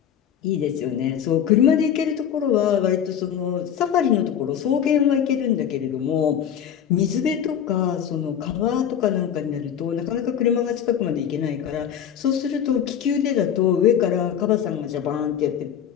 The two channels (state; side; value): quieter; right; 8.9 dB